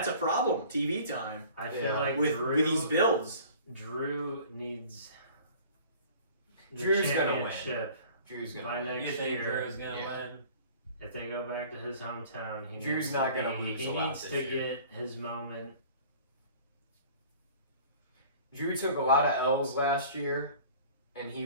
a problem. TV time I feel Yeah. like with these builds. Drew needs the Drew's gonna win. championship Drew's by gonna. next You think year. Drew's gonna Yeah. win? If they go back to his hometown, he Drew's needs not to gonna be, lose he a lot needs this to year. get his moment. Drew took a lot of L's last year, and he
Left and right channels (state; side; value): inverted; both; correlation -0.47